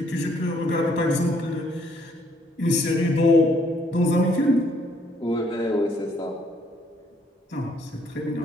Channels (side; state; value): both; normal; correlation 0.67